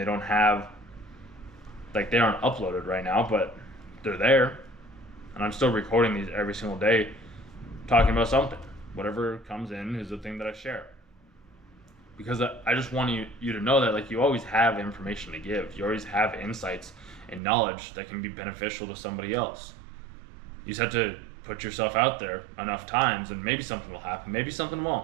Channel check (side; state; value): left; drops out; at 17.4 s